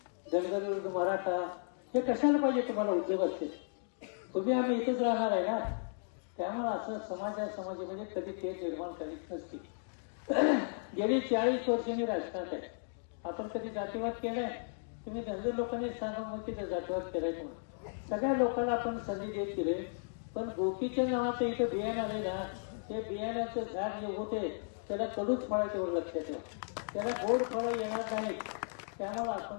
धनगर विरुद्ध मराठा हे कशाला पाहिजे तुम्हाला उद्योग असते. तुम्ही आम्ही इथेच राहणार आहे ना. त्यामुळे असं समाजामध्ये कधी ते निर्माण करीत नसते. गेली 40 वर्ष मी राजकारणात आहे. आपण कधी जातीवाद केलाय? तुम्ही धनगर लोकांनी सांगा मग तिथे जातीवाद केलाय म्हणून. सगळ्या लोकांना आपण संधी देत गेले. पण गोपीचंद नावाचं इथं बियाणं आले ना, ते बियाण्याचं झाड जे होते त्याला कडूच फळं तेवढं लक्षात ठेवा. त्याला गोड फळं येणार नाहीत. त्यामुळे आपण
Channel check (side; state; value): right; silent; digital silence